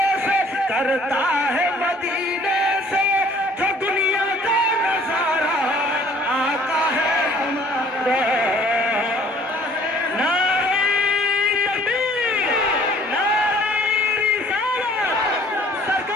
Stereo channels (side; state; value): both; normal; correlation 0.56